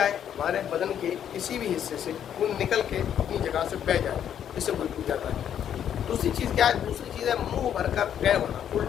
है, हमारे बदन के किसी भी हिस्से से खून निकल के अपनी जगह से बह जाए, इससे वुज़ू टूट जाता है। दूसरी चीज़ क्या है, दूसरी चीज़ है मुंह भरकर गए होना,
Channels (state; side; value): quieter; right; 9.5 dB